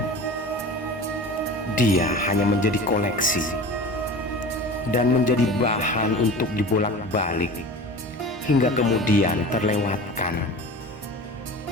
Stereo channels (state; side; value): normal; both; correlation 0.36